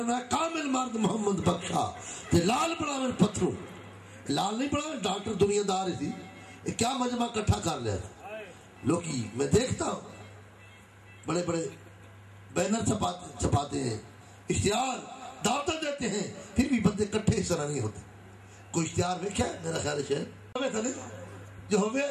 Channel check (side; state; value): both; identical; correlation 1.00